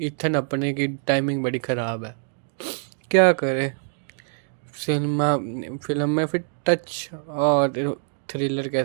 इथन अपने की टाइमिंग बड़ी ख़राब है, क्या करे। फिल्म में फिर टच और थ्रिलर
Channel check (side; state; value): left; silent; 62 dB below the other